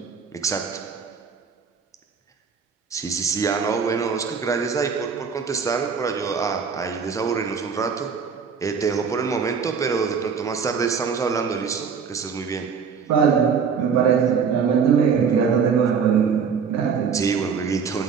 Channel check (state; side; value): quieter; left; 6.2 dB